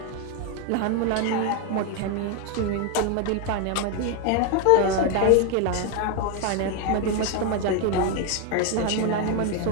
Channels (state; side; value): different; both; correlation 0.01